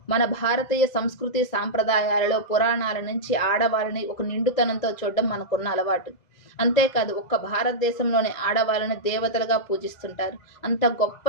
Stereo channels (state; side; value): late; right; 2.0 ms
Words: మన భారతీయ సంస్కృతి సాంప్రదాయాలలో పురాణాల నుంచి ఆడవాళ్ళని ఒక నిండుతనంతో చూడడం మనకున్న అలవాటు. అంతేకాదు, ఒక్క భారతదేశంలోని ఆడవాళ్ళని దేవతలుగా పూజిస్తుంటారు. అంత గొప్ప